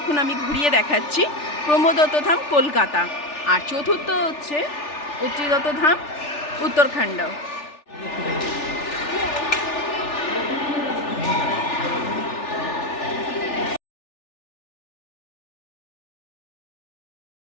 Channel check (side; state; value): right; late; 3.4 ms